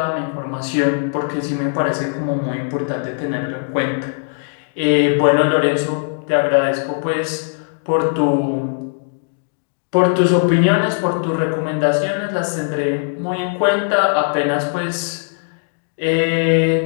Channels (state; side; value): silent; right; digital silence